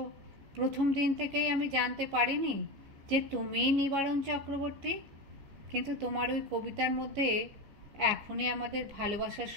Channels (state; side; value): late; left; 15 ms